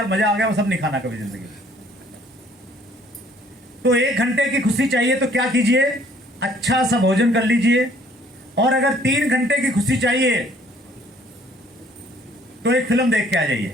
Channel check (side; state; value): both; normal; correlation 0.59